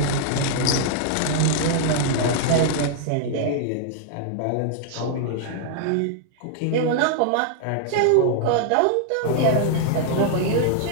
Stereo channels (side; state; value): both; different; correlation -0.01